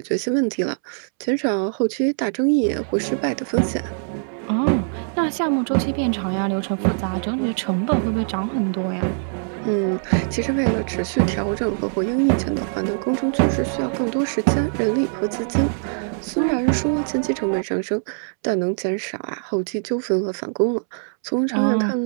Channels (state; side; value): silent; left; 64 dB below the other